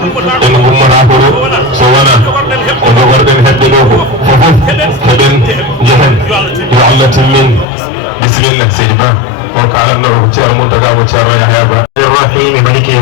gummata ko ɗo so wona ko jogorɗen heɓɓe ɗo ko fofof heɓen jehen yo Allah timmin bisimilla seydi Ba o kalatno ko ceerno Mountaga ko ceerno Yahya Ba الرحيم مالك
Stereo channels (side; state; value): right; drops out; at 7.7 s